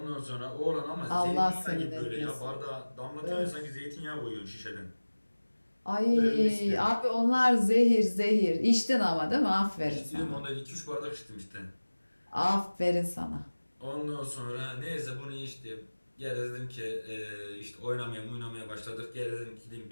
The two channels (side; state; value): both; inverted; correlation -1.00